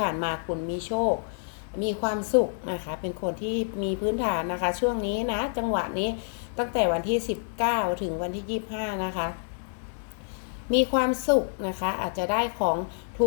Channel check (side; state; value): right; silent; 59 dB below the other